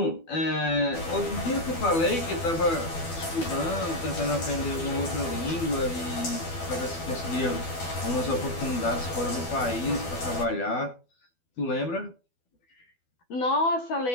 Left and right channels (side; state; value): right; late; 12 ms